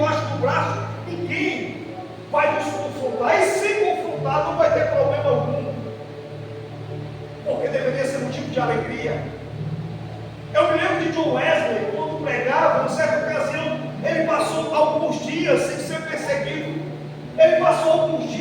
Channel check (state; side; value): identical; both; correlation 1.00